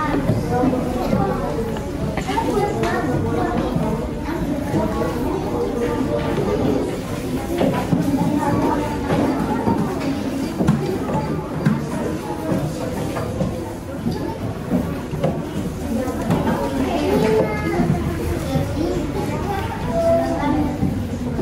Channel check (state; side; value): identical; both; correlation 1.00